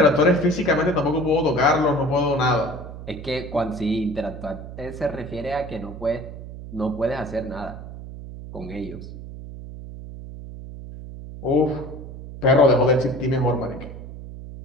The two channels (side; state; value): right; noise; hum, 12 dB below the sound